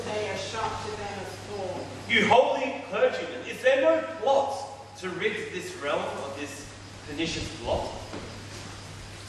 day as sharp to them as thorn. You holy clergymen, is there no plot to rid this realm of this pernicious blot?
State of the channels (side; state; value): both; identical; correlation 1.00